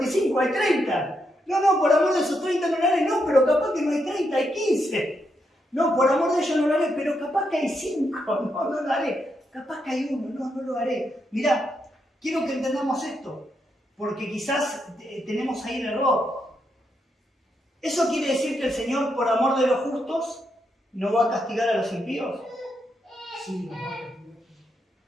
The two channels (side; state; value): both; normal; correlation 0.81